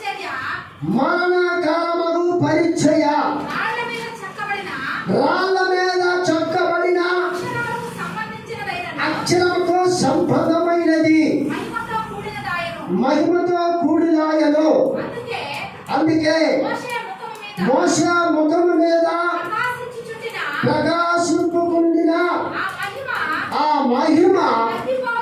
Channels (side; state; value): both; identical; correlation 1.00